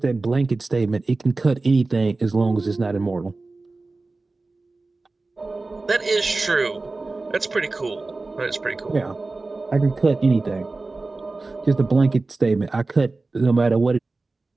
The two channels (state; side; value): quieter; left; 3.5 dB